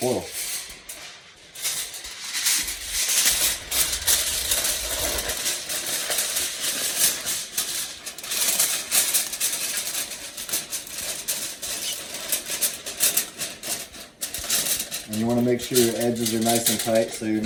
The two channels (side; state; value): both; identical; correlation 1.00